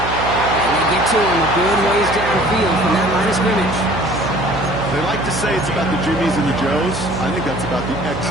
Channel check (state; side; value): noise; right; hum, 7 dB below the sound